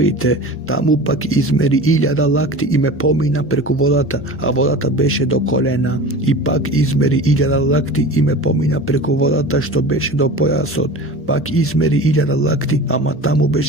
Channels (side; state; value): both; normal; correlation 0.35